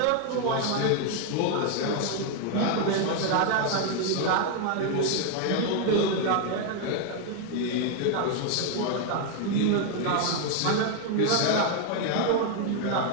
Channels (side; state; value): both; different; correlation 0.00